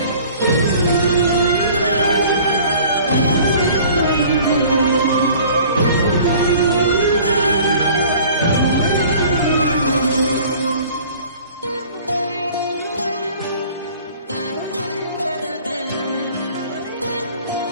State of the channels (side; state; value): both; inverted; correlation -0.49